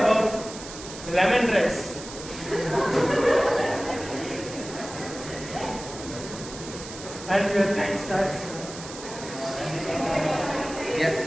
lemon rice. And your time starts.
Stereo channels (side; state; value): right; noise; hiss, 13 dB below the sound